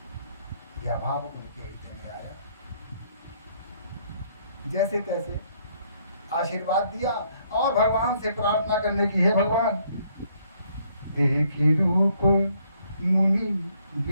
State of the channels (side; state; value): both; inverted; correlation -0.68